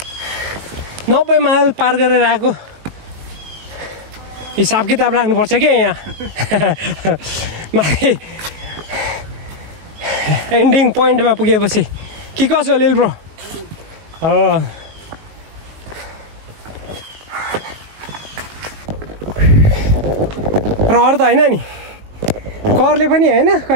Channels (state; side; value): late; left; 19 ms